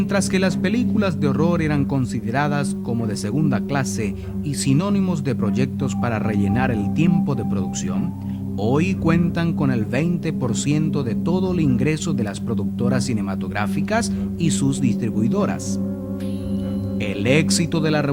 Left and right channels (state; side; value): identical; both; correlation 1.00